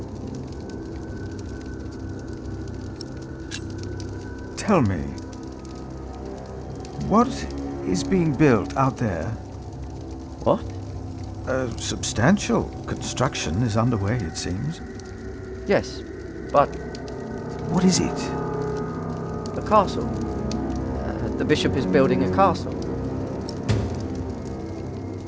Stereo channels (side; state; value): both; identical; correlation 1.00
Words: Tell me, what is being built out there? What? A substantial construction is underway, it seems. Yes, but... What is it? A castle. The bishop is building a castle.